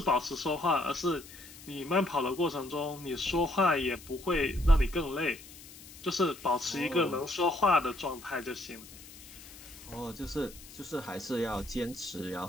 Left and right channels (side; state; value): left; noise; hiss, 18 dB below the sound